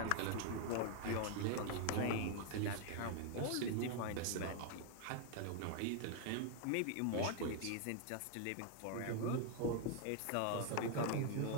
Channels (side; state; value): both; different; correlation 0.00